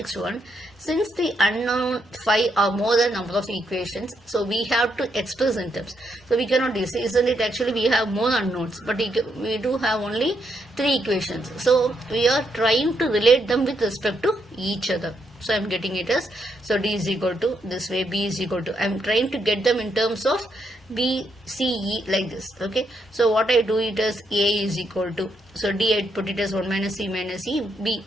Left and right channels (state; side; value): normal; both; correlation 0.78